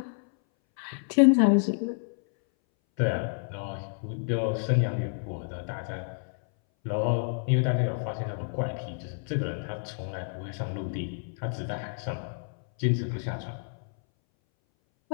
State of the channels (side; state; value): right; silent; 58 dB below the other